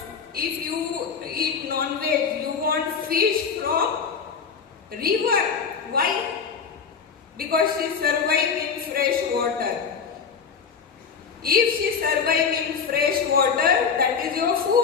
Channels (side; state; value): right; quieter; 6.2 dB